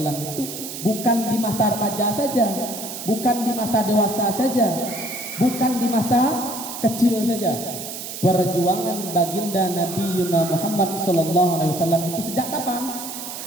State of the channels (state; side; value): noise; right; hiss, 9 dB below the sound